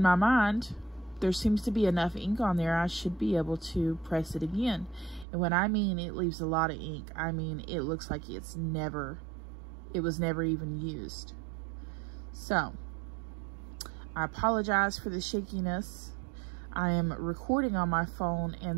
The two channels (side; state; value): left; drops out; at 5.2 s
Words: my mind, there seems to be enough ink on there, I should be able to press it again. And when I mean it leaves a lot of ink, I mean it looks like it was never even used. So, I apologize for the shakiness. I am recording on my phone,